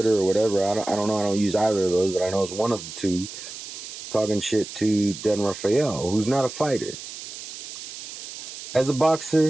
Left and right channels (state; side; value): noise; right; hiss, 11 dB below the sound